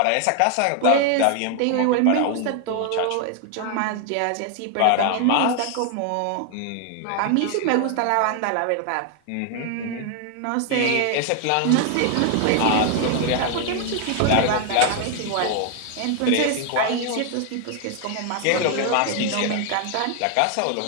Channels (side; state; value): both; different; correlation 0.00